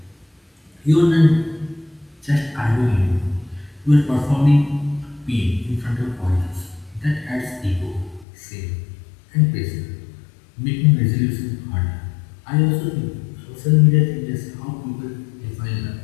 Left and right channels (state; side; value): drops out; right; at 8.2 s